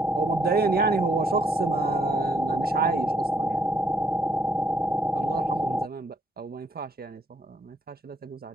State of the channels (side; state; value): both; normal; correlation 0.70